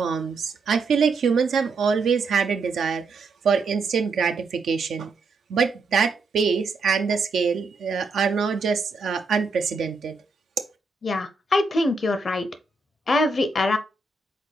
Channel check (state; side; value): quieter; left; 3.6 dB